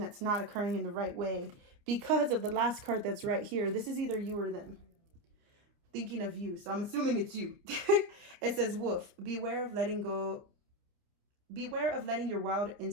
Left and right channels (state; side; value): late; left; 29 ms